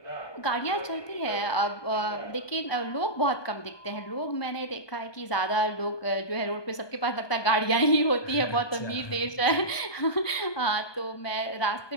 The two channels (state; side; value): late; right; 1.2 ms